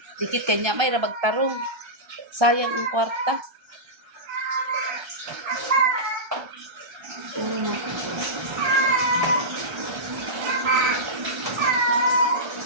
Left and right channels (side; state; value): left; late; 1.3 ms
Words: Dikit kanya may ra magtarong. Sayang ang kwarta.